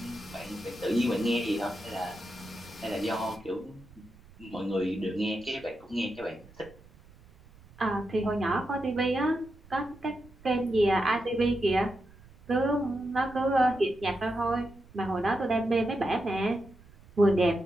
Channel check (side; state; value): right; noise; rumble, 24 dB below the sound